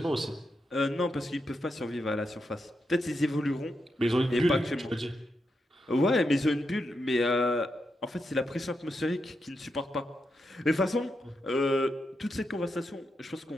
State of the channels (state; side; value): normal; both; correlation 0.85